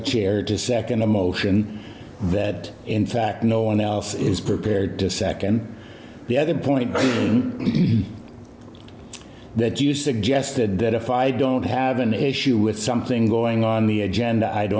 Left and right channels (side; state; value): both; identical; correlation 1.00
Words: to second a motion that, in fact, no one else is prepared to second. The other point being that you suggested that if I don't have an issue with something going on the agenda, I